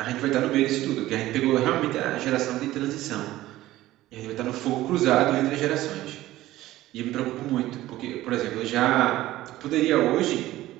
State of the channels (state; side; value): quieter; left; 15.8 dB